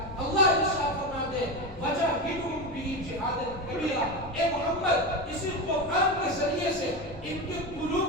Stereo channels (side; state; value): left; noise; rumble, 17 dB below the sound